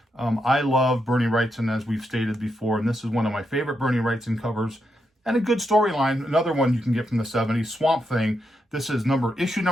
I love Bernie Wrightson, as we've stated before, and this is one of my favorite Bernie Wrightson covers, and a good storyline. Another one you can get from the 70s, Swamp Thing. This is issue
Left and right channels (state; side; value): normal; both; correlation 0.83